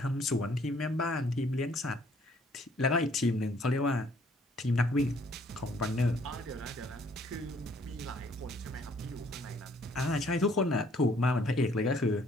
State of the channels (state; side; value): normal; both; correlation 0.62